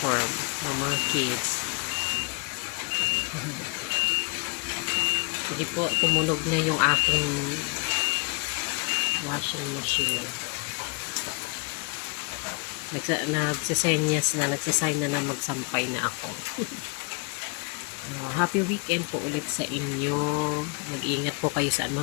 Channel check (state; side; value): quieter; right; 34.5 dB